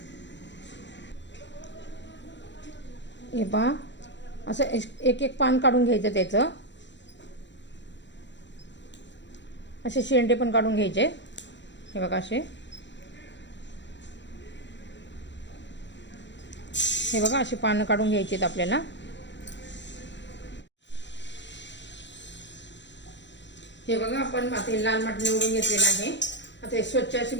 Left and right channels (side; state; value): right; late; 0.53 ms